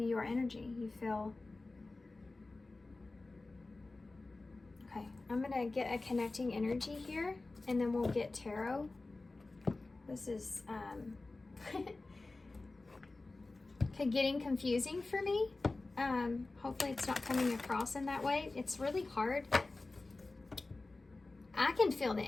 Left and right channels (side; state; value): right; quieter; 3.3 dB